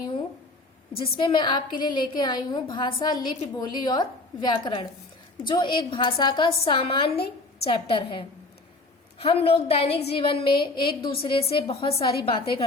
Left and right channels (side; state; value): right; quieter; 3.1 dB